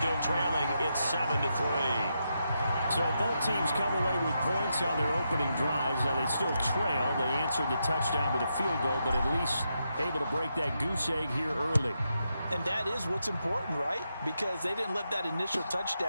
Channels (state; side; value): inverted; both; correlation -0.84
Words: trailing. It's 7-3. So both teams come away with points on their opening drives. Now they still trail. They answered the touchdown with a field goal, but at least able to break that goose egg here early. And that is what's important, right? Because they didn't let that initial